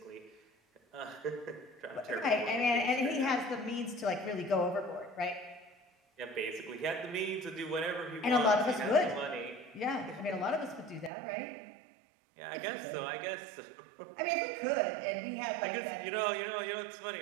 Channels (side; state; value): left; drops out; at 11.1 s